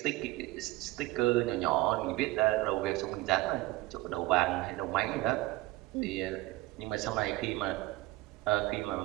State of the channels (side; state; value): left; quieter; 18.7 dB